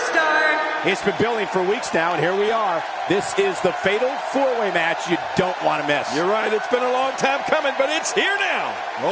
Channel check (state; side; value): identical; both; correlation 1.00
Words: It's been building for weeks now, and here we are. This is the fatal four-way match you don't want to miss. You're right, it's been a long time coming, but it's here now.